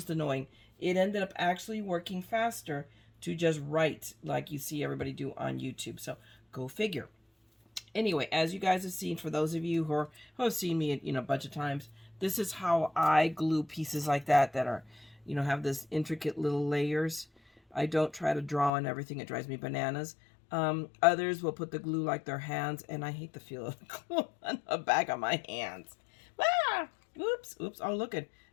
annoying. It ended up actually working faster to just write like you see everybody do on YouTube. So go figure. Anyway, as you guys have seen, for those of you who have seen me, a bunch of times, this is how I glue pieces like that are, have this intricate little layers. I don't try to draw on everything. It drives me bananas. Others will put the glue like their hands, and I hate the feel of the glue on the back of my hands. Ah! Oops. Oh, look at.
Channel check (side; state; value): right; drops out; at 18.7 s